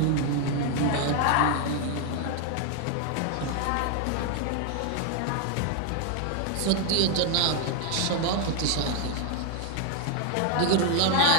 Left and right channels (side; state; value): both; different; correlation 0.00